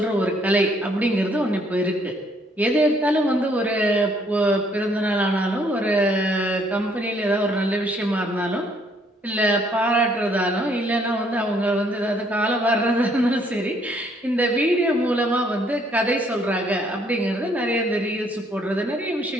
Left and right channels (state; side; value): normal; both; correlation 0.66